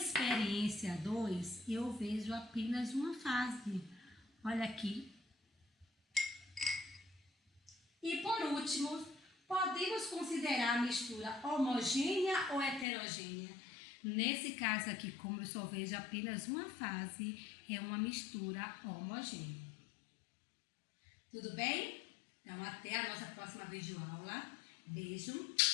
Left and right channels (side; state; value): right; drops out; at 12.9 s